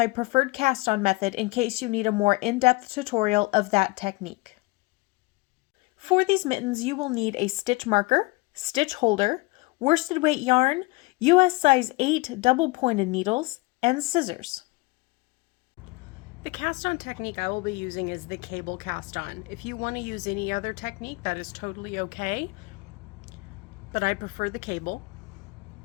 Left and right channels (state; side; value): quieter; right; 24.0 dB